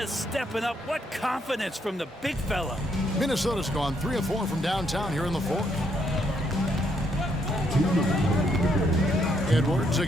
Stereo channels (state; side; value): normal; both; correlation 0.73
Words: stepping up. What confidence from the big fella. Minnesota's gone 3 of 4 from downtown here in the fourth. Edwards